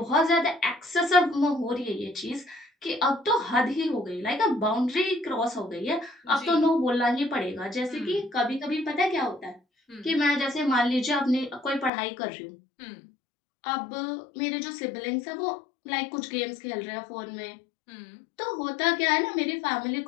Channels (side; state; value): right; drops out; at 11.9 s